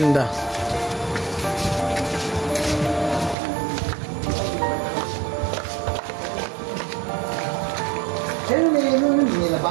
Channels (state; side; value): drops out; left; at 3.4 s